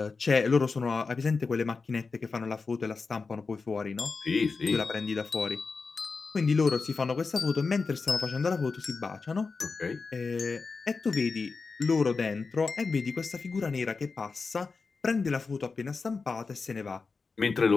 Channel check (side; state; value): right; quieter; 4.5 dB